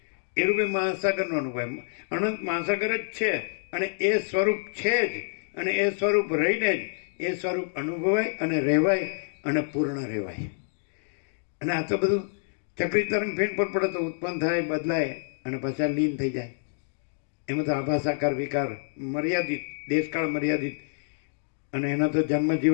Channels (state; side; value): silent; right; digital silence